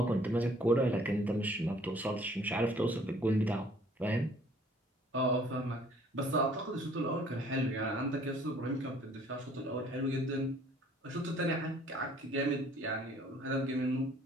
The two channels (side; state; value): both; normal; correlation 0.57